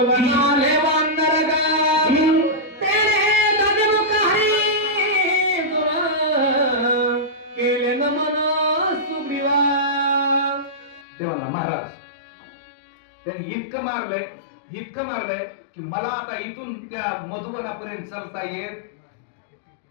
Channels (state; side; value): drops out; right; at 11.1 s